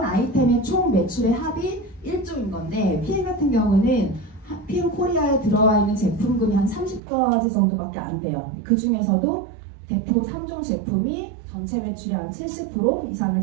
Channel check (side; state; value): left; drops out; at 7.0 s